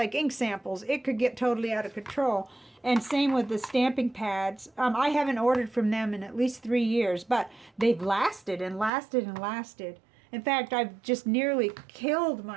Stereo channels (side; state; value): left; drops out; at 8.9 s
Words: ink samples. It could get totally out of control. And same with the stamping pads. I haven't ordered from them in at least 3 years, but they've lasted and lasted and lasted. In fact, I've just nearly killed